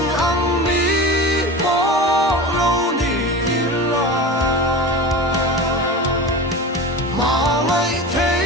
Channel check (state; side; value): normal; both; correlation 0.30